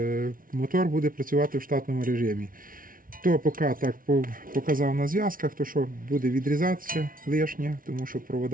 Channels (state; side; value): late; left; 0.40 ms